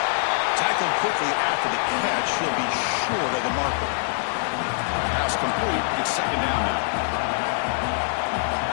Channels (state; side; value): silent; right; digital silence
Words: Tackled quickly after the catch. He'll be short of the marker. Pass complete. It's second down now.